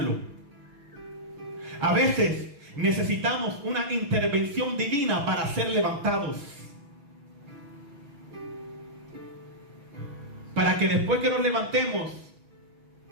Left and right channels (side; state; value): left; late; 6.1 ms